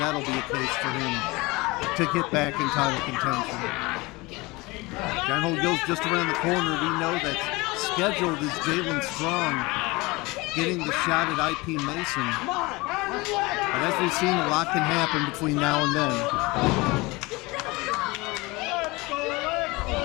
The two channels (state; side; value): quieter; right; 23.4 dB